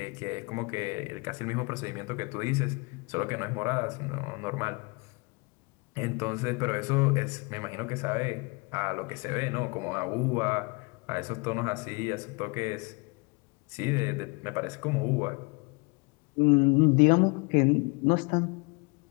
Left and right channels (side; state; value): right; quieter; 29.8 dB